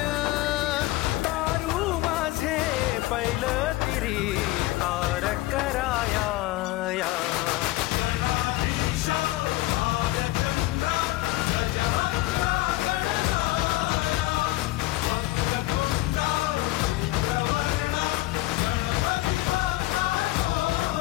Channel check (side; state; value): right; quieter; 18.1 dB